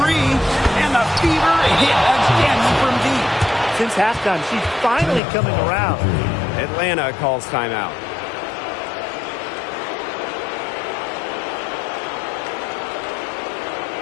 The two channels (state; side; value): drops out; right; at 5.2 s